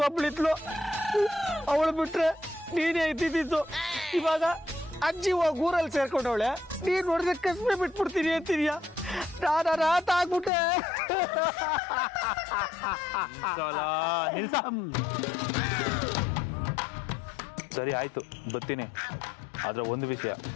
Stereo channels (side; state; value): right; drops out; at 10.5 s